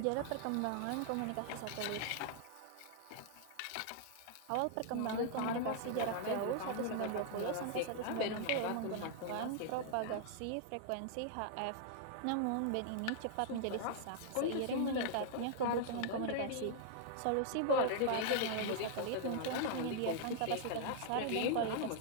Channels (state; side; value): different; both; correlation -0.01